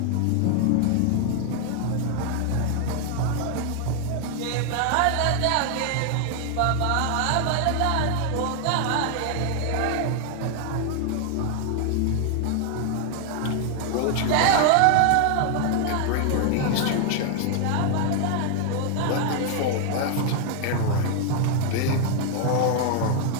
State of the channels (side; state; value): both; different; correlation 0.00